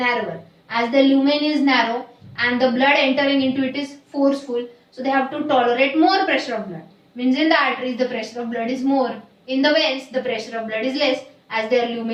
As the lumen is narrow and the blood entering into it is forceful, so they have to tolerate more pressure of blood. Means in the arteries the pressure of blood is more. In the veins the pressure of blood is less as their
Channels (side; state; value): both; identical; correlation 1.00